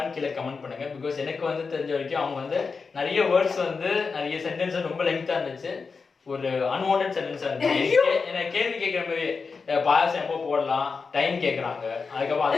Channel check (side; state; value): right; quieter; 4.9 dB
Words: கீழே கமெண்ட் பண்ணுங்க பிகாஸ் எனக்கு வந்து தெரிஞ்ச வரைக்கும் அவங்க வந்து நிறைய வேர்ட்ஸ் வந்து நிறைய சென்டென்ஸ் ரொம்ப லெங்தா இருந்துச்சு ஒரு அன்வான்டட் சென்டென்ஸா இருந்துச்சு எனக்கு கேள்வி கேட்குற மாதிரி பாயசம் எப்போ போடலாம் டைம் கேட்குறாங்க அதுக்கப்புறம்